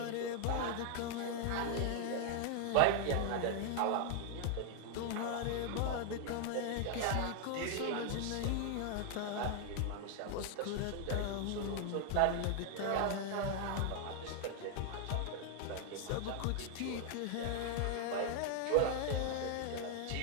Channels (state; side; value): different; both; correlation 0.00